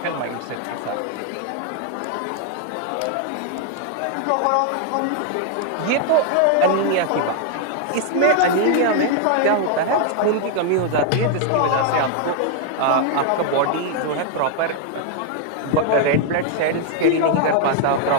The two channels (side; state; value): both; different; correlation 0.00